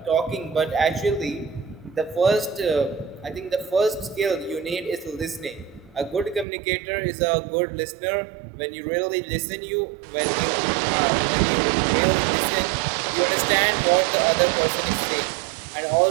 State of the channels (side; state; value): left; drops out; at 6.5 s